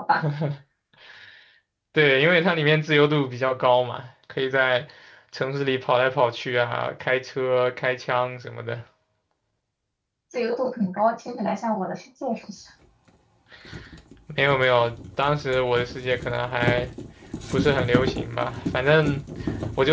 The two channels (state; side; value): identical; both; correlation 1.00